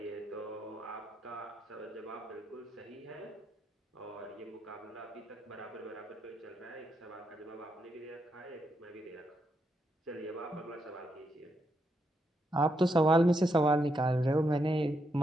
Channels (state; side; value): normal; both; correlation 0.81